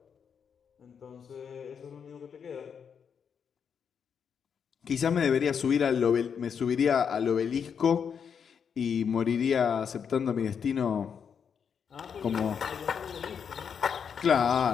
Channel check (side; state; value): right; quieter; 7.0 dB